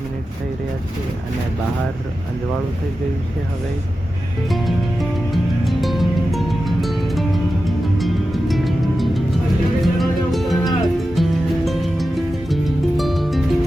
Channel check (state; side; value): normal; both; correlation 0.92